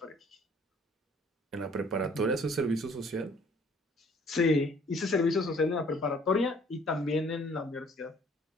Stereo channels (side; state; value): both; normal; correlation 0.58